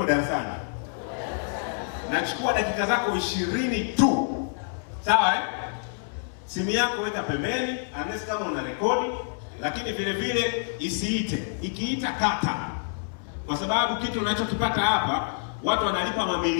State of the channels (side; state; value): right; silent; 60 dB below the other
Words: darasani. Nachukua dakika zako 20 tu. Sawa eh? Simu yako weka pembeni, unless kama una rekodi, lakini vile vile isiite. Ikiita kata. Kwa sababu kitu unachokipata hapa, watu wanalipa